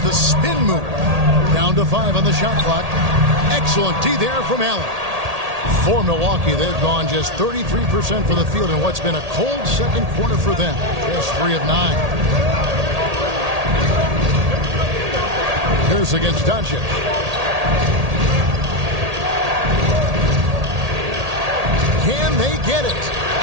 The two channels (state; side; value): late; left; 1.8 ms